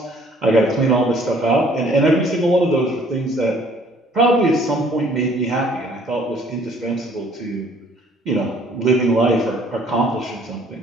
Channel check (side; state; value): both; normal; correlation 0.58